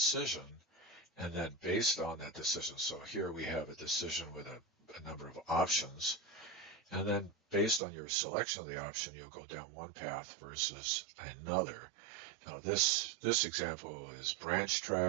and then based on that decision, so here we have a decision with a number of options, and then based on your selection of the option, you'll go down one path versus another. Now this example is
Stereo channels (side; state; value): left; drops out; at 7.8 s